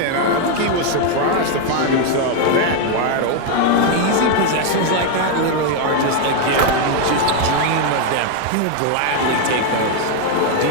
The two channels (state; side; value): different; both; correlation 0.01